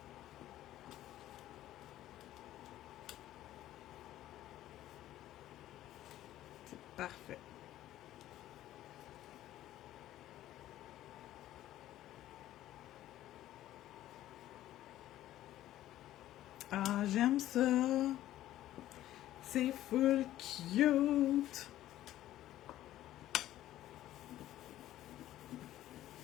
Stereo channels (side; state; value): right; quieter; 13.7 dB